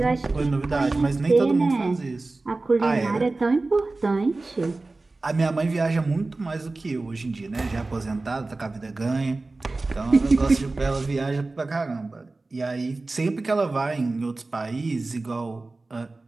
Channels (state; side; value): quieter; left; 3.3 dB